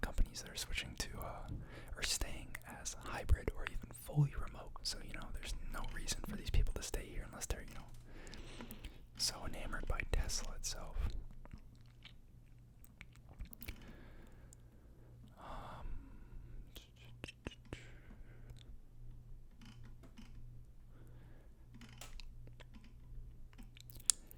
companies that are switching to or staying as hybrid or even fully remote. So there's no reason for these people to stay here unless they're so enamored by Tesla itself.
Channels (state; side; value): identical; both; correlation 1.00